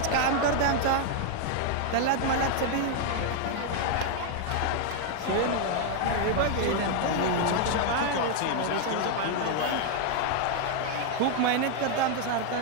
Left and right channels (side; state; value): both; different; correlation 0.00